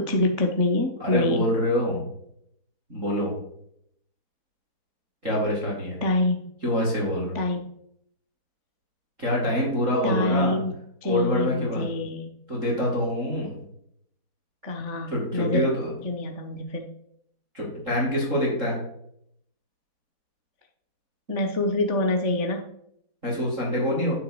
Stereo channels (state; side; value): late; left; 3.8 ms